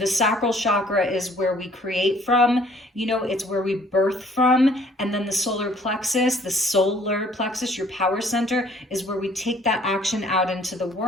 sacral chakra is where we create from, you know, it's where we birth from. And then the solar plexus, your power center, is where we take that action out into the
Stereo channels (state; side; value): normal; both; correlation 0.59